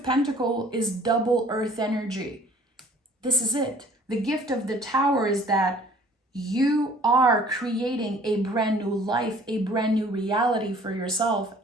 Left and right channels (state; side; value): normal; both; correlation 0.53